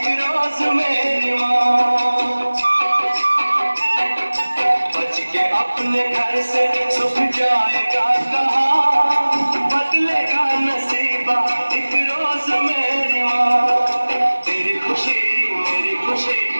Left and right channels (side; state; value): both; inverted; correlation -1.00